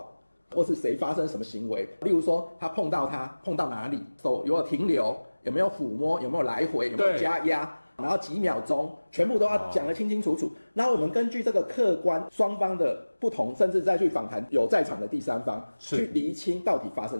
或是誰發生什麼行為。例如說，他碰到哪裡，手有沒有停留，有沒有撫摸，有沒有來回，有沒有加壓。然後幾秒鐘，全部都要講得清清楚楚。然後我們根據這個客觀雙方的不同，甚至再去訪談有在場的第三方，去釐清到底發生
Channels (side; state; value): both; inverted; correlation -1.00